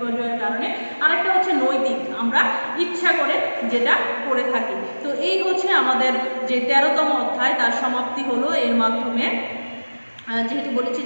কারণে। আরেকটা হচ্ছে নৈতিক, আমরা ইচ্ছা করে যেটা করে থাকি। তো এই হচ্ছে আমাদের যে 13তম অধ্যায়, তার সমাপ্তি হলো এর মাধ্যমে। যেহেতু বলেছি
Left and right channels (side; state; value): both; inverted; correlation -1.00